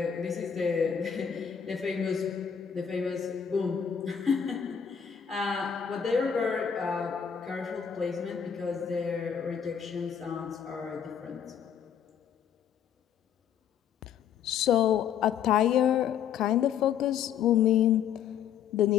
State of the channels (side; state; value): right; quieter; 8.1 dB